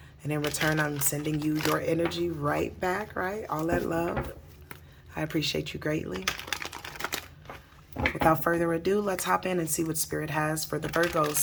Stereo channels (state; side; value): identical; both; correlation 1.00